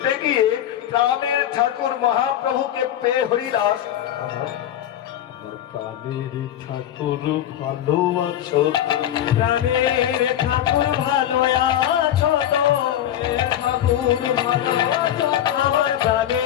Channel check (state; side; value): quieter; right; 11.3 dB